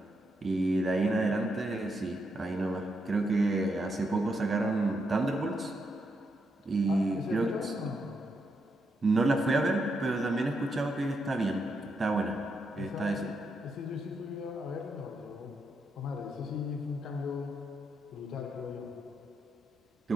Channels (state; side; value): normal; both; correlation 0.81